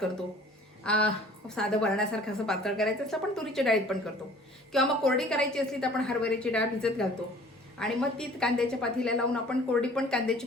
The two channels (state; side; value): normal; both; correlation 0.50